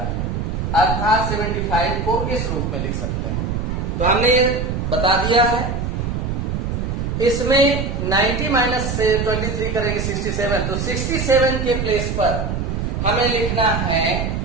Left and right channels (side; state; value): right; noise; rumble, 2 dB below the sound